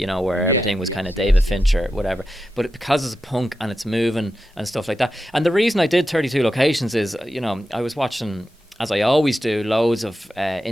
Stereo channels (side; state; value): both; normal; correlation 0.90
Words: know, where everything was kind of David Fincher, whatever. But because it's punk and it's moving and stuff like that. And the reason I did 32 locations is, you know, I was watching, as I always do, loads of